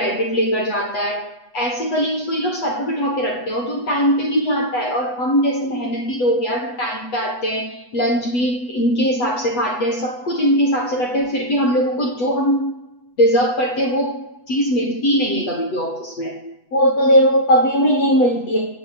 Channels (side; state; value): right; late; 8.1 ms